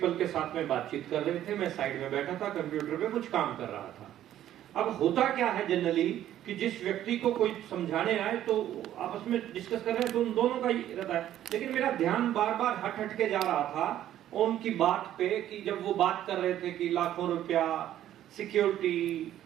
के साथ में बातचीत कर रहे थे, मैं साइड में बैठा था, कंप्यूटर पे कुछ काम कर रहा था। अब होता क्या है जनरली कि जिस व्यक्ति को कोई समझाने आए तो आपस में डिस्कस कर रहे हैं तो उन दोनों का ही रहता है। लेकिन मेरा ध्यान बार बार हट के जा रहा था उनकी बात पे, कि जब वो बात कर रहे थे कि लाखों रुपया, सिक्योरिटी,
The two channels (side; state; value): left; quieter; 12.0 dB